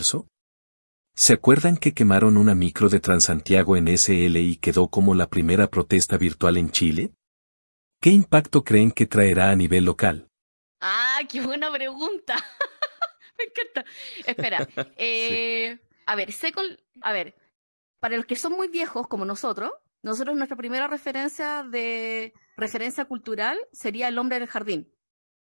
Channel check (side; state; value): both; inverted; correlation -1.00